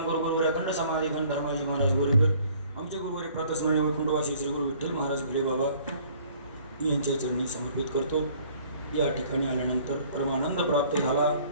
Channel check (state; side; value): inverted; both; correlation -0.56